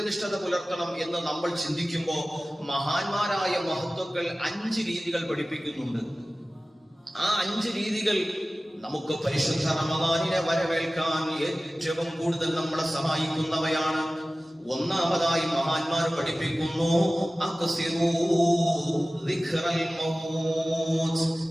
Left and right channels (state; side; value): normal; both; correlation 0.97